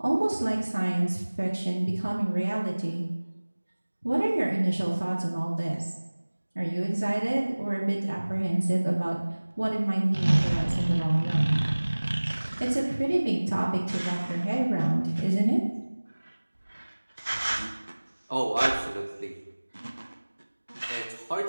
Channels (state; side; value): inverted; both; correlation -1.00